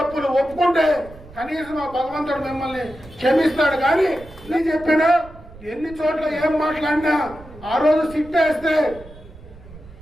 ఒప్పుకుంటే కనీసం ఆ భగవంతుడు మిమ్మల్ని క్షమిస్తాడు. కానీ నీ చెప్పినా ఎన్ని చోట్ల ఏం మాట్లాడినా ఆ రోజు సిట్టేస్తే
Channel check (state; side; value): noise; right; rumble, 20 dB below the sound